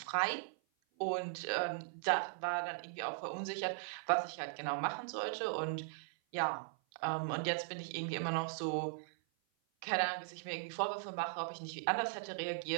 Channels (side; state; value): left; silent; 52 dB below the other